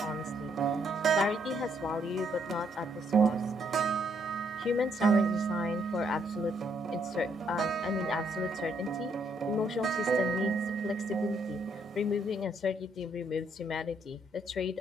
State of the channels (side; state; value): both; normal; correlation 0.72